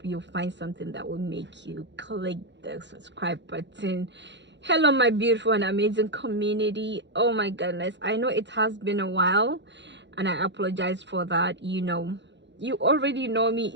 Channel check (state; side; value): late; left; 0.52 ms